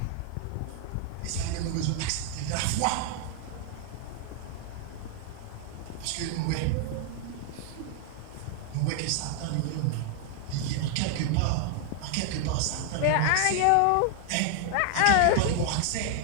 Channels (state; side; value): different; both; correlation 0.00